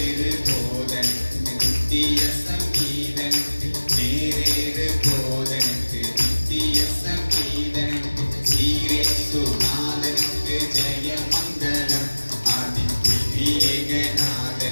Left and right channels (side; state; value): both; inverted; correlation -1.00